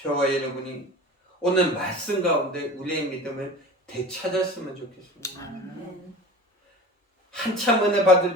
여러분이 오늘 말씀 가운데 우리의 믿음을 되찾았으면 좋겠습니다. 한참 은혜 받을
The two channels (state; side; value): normal; both; correlation 0.37